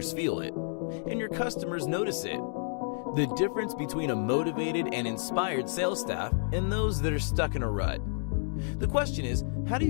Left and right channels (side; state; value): right; silent; digital silence